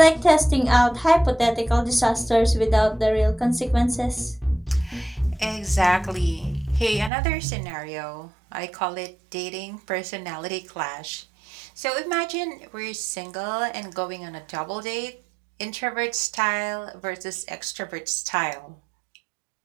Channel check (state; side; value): drops out; left; at 7.1 s